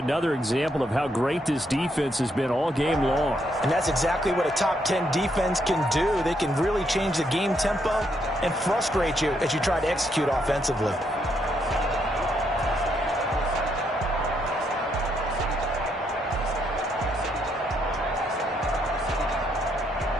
example of how great this defense has been all game long. And that's exactly what a top 10 defense can do. They can really change the game tempo and frustrate you as you try to execute offensively.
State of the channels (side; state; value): both; normal; correlation 0.75